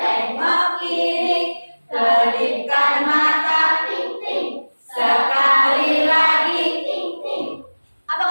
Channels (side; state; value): both; inverted; correlation -1.00